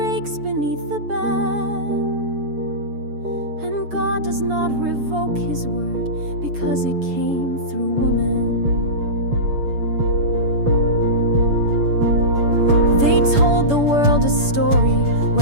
beneath the ban, and God does not revoke his word because it came through woman. They told the world a story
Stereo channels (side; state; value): left; late; 7.0 ms